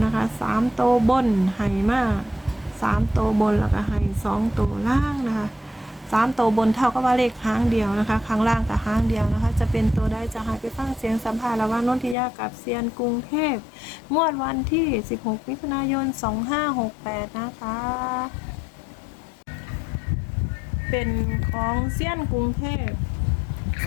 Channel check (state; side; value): drops out; right; at 12.2 s